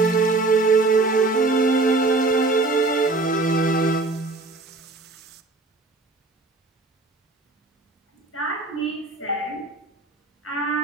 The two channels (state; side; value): quieter; left; 3.3 dB